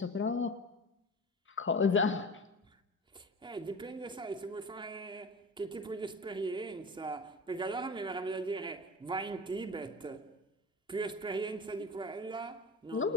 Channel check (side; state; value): both; normal; correlation 0.32